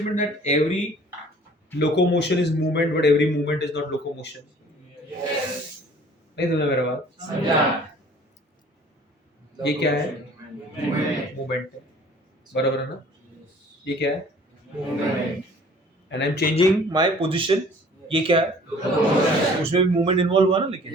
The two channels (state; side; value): normal; both; correlation 0.51